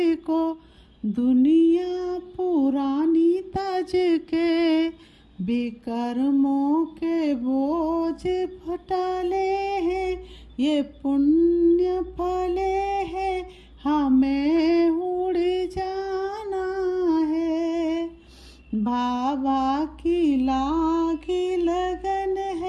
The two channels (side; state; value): both; identical; correlation 1.00